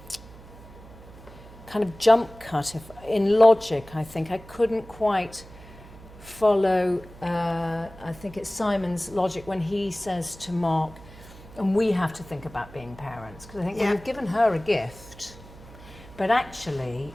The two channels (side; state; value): right; noise; hum, 19 dB below the sound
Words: kind of jump cut in logic, I think. I couldn't quite follow, I think it's Simon's logic when he says to Mark, and we have to think about being parents, because I think, well, you've given her a gift, but actually